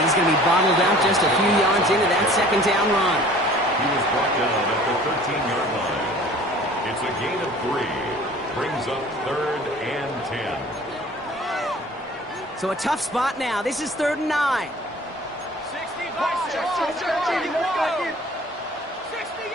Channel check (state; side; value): normal; both; correlation 0.48